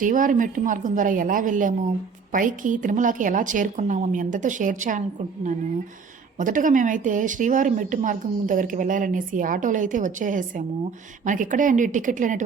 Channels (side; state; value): left; quieter; 5.5 dB